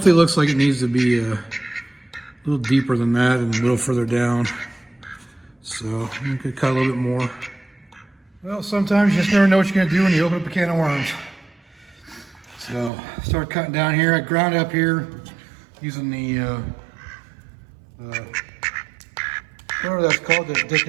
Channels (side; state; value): left; drops out; at 12.9 s